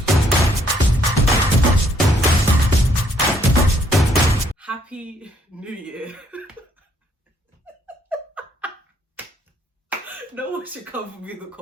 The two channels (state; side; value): normal; both; correlation 0.68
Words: Happy New Year. No one should come for me in the